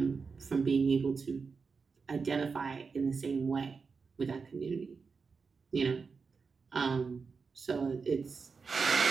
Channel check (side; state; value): left; quieter; 5.0 dB